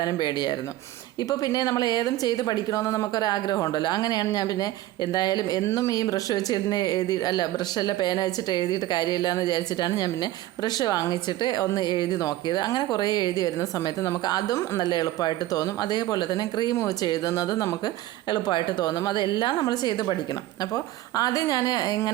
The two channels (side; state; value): left; quieter; 15.3 dB